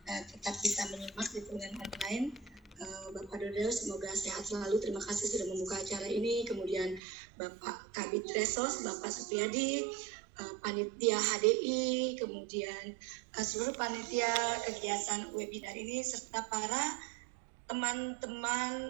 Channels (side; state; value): left; drops out; at 7.0 s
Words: tetap bisa menyimak di dengan online. Bapak Dodo semoga sehat selalu, terima kasih sudah membuka acara ini. Kemudian Bapak Kabid Resos, Bapak Supriyadi, panitia HDI, kemudian seluruh panitia kegiatan webinar ini, serta para